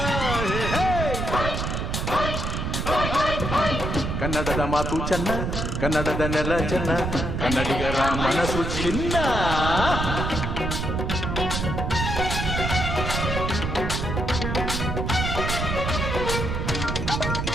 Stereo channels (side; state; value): right; noise; rumble, 2 dB below the sound